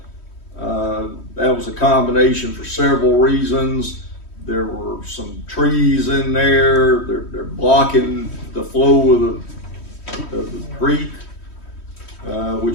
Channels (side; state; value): right; late; 3.1 ms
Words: That was a combination for several reasons. There were some trees in there. They're blocking the flow of the creek,